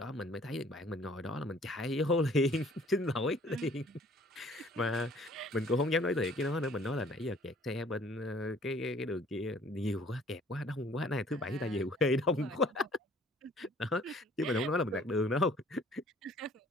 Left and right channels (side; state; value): both; normal; correlation 0.56